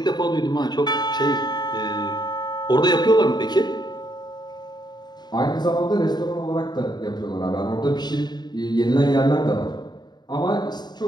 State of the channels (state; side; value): late; right; 0.20 ms